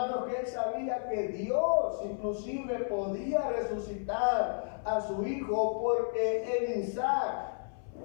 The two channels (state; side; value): silent; right; 56 dB below the other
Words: que él sabía que Dios inclusive podía resucitar a su hijo, porque en Isaac